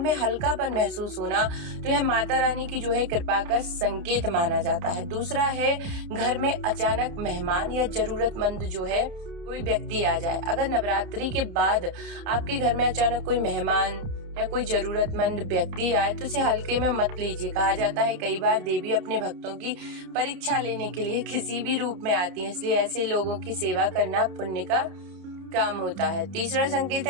हल्कापन महसूस होना, तो यह माता रानी की जो है कृपा का संकेत माना जाता है। दूसरा है, घर में अचानक मेहमान या जरूरतमंद जो है कोई व्यक्ति आ जाए। अगर नवरात्रि के बाद आपके घर में अचानक कोई मेहमान या कोई जरूरतमंद व्यक्ति आए तो उसे हल्के में मत लीजिए। कहा जाता है कई बार देवी अपने भक्तों की परीक्षा लेने के लिए किसी भी रूप में आती है, इसलिए ऐसे लोगों की सेवा करना पुण्य का काम होता है। तीसरा संकेत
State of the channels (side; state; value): left; late; 29 ms